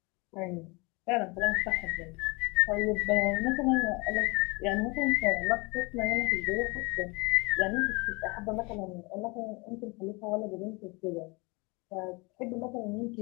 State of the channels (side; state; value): right; quieter; 27.4 dB